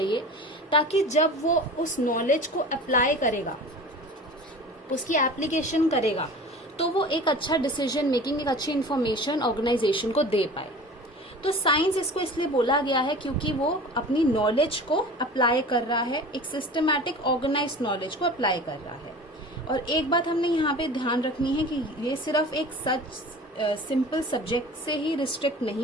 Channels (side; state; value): both; normal; correlation 0.39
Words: ताकि जब वो उस नॉलेज को अप्लाई करेगा, उसकी एप्लीकेशन करेगा, तो वो एक अच्छा डिसीजन मेकिंग, एक अच्छी इंफॉर्मेशन ऑर्गेनाइजेशन को दे पाए। तो साइंस इसको इसलिए बोला गया है क्योंकि वो अपनी नॉलेज को अप्लाई कर रहा है, एक सिस्टमैटिक ऑर्गेनाइज्ड नॉलेज को अप्लाई कर रहा है। और एक बात हमने यहाँ पे ध्यान रखनी है कि ये सिर्फ एक सिंपल सब्जेक्ट से ही रिस्ट्रिक्ट